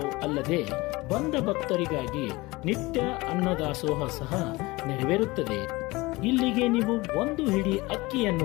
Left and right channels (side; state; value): right; quieter; 22.0 dB